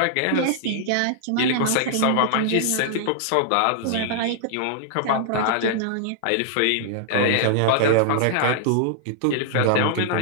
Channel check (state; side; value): different; both; correlation -0.01